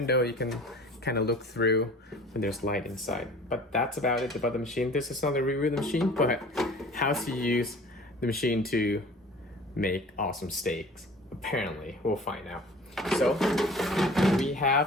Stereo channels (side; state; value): both; normal; correlation 0.45